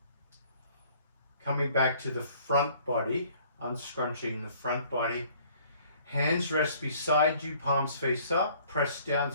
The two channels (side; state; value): both; inverted; correlation -0.57